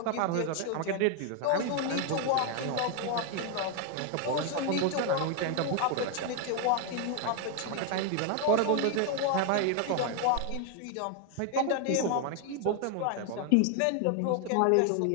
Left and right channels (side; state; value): both; different; correlation 0.00